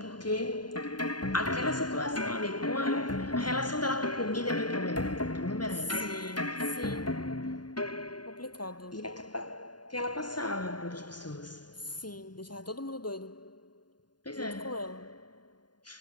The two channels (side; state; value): right; late; 0.70 ms